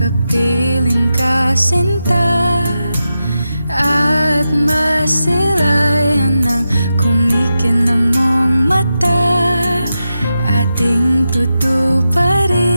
ka, sinta, at masilayan ng kumikinang mong mata. Ating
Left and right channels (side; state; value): both; inverted; correlation -0.89